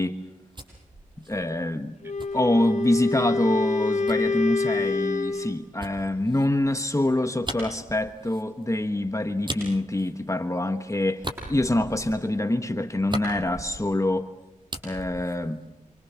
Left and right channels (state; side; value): normal; both; correlation 0.85